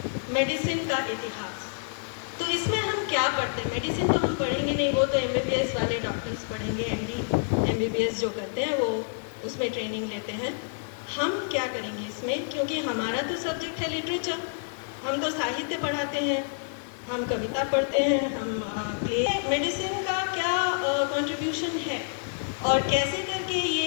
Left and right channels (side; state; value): right; silent; digital silence